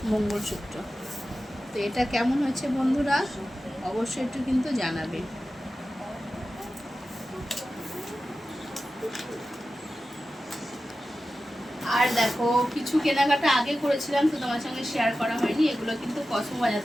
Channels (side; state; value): both; normal; correlation 0.93